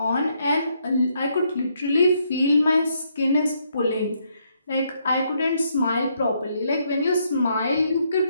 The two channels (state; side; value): inverted; both; correlation -0.74